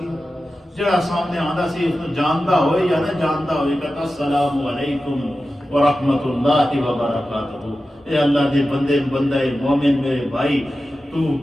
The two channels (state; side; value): normal; both; correlation 0.93